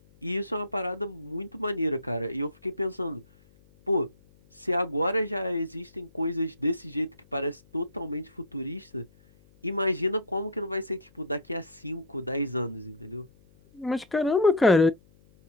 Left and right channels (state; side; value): noise; left; hum, 29 dB below the sound